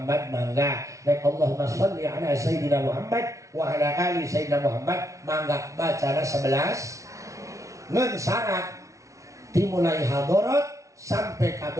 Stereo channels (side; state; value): left; late; 0.15 ms